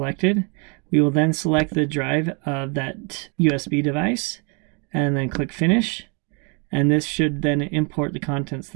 We will then select the drive of that USB device and then click finish. And this should then import the contents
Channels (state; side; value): quieter; left; 34.0 dB